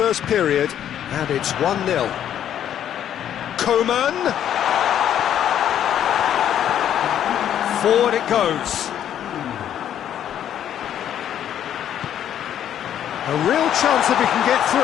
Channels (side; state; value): right; quieter; 10.2 dB